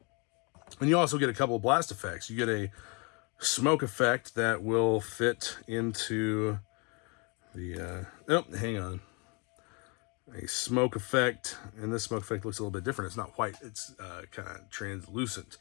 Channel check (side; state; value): right; quieter; 31.7 dB